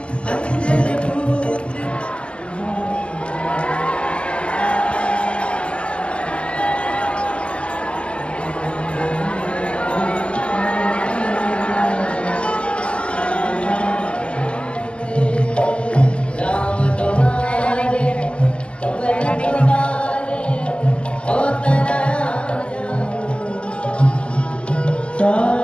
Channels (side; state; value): right; late; 0.053 ms